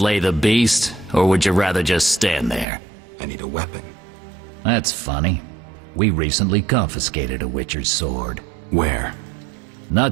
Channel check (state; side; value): drops out; left; at 2.7 s